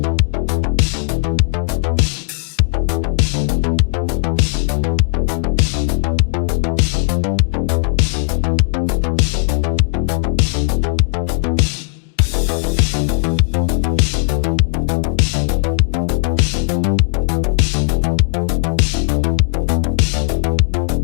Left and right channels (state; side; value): silent; right; digital silence